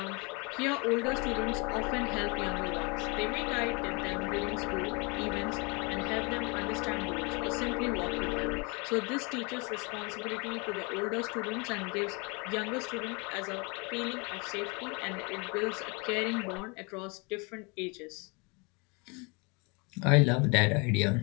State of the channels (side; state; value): right; quieter; 30.4 dB